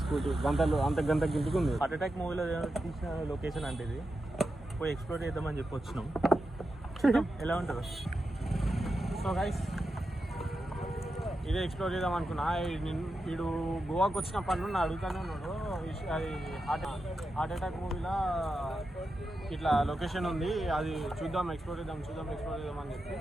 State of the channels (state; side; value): normal; both; correlation 0.89